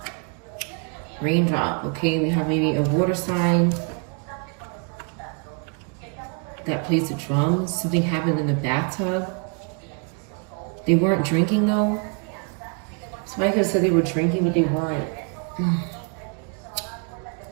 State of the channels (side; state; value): left; quieter; 35.4 dB